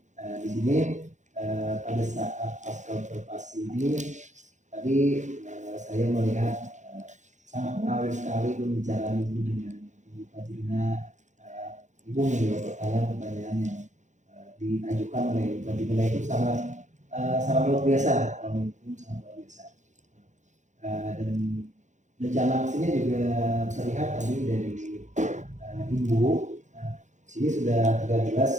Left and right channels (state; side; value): late; left; 0.35 ms